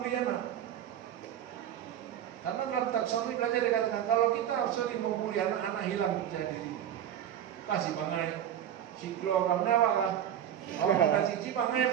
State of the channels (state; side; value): quieter; left; 10.3 dB